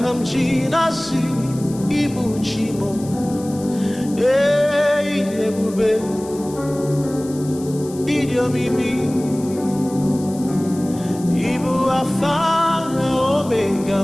m ji na-asị Ibu Chi mo. Ịdị ebube, ịdị omimi, Ibu Alfa na Omega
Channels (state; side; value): noise; left; hiss, 18 dB below the sound